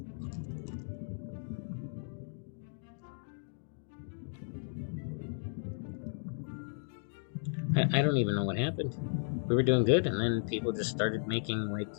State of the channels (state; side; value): silent; right; digital silence